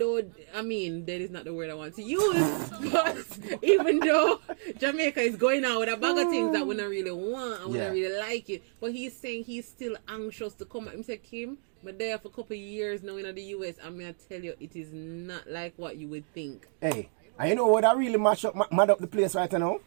dead is not the word I want to use, but even though Jamaica is going out with a bag of things that we don't really want and we don't really like it, but he's saying he's still anxious to come back. He said, Kim, but there for a couple of years now in the US, I'm going to tell you, it is not like what you would think. Hey, and you know what I really mad up the place right now?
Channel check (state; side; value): silent; left; 58 dB below the other